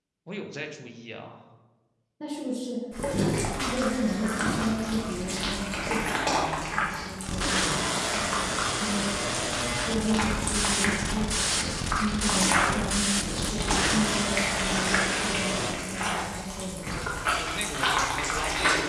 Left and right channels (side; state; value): both; identical; correlation 1.00